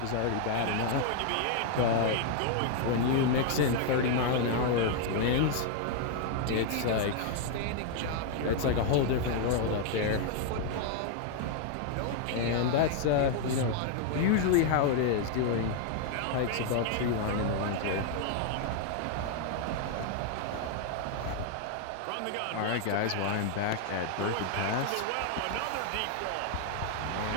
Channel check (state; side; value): different; both; correlation 0.00